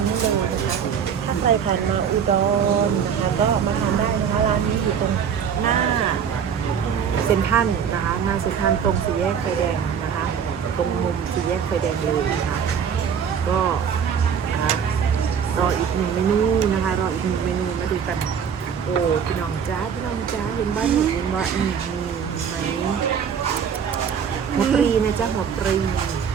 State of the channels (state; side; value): quieter; left; 7.4 dB